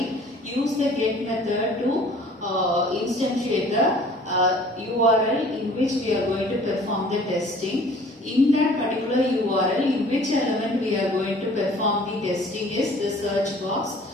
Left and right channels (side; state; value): both; normal; correlation 0.51